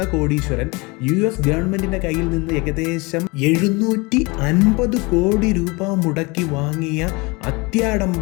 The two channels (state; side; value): quieter; right; 26.2 dB